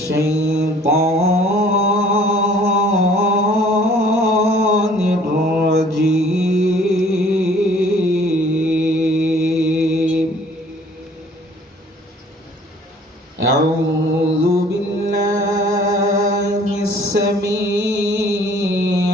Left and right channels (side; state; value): both; normal; correlation 0.55